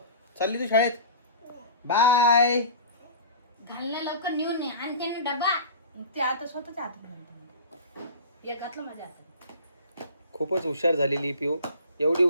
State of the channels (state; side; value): inverted; both; correlation -0.38